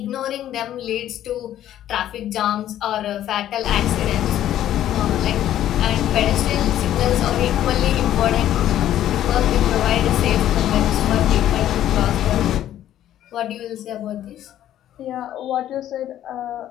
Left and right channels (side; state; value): right; quieter; 12.0 dB